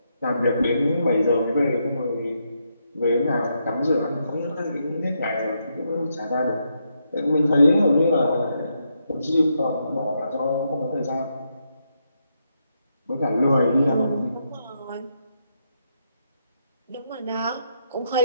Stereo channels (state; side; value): inverted; both; correlation -0.80